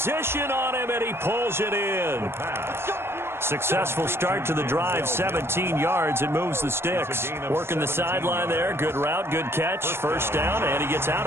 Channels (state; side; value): late; left; 0.12 ms